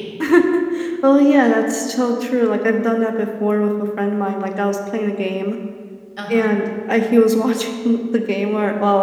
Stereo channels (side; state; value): both; identical; correlation 1.00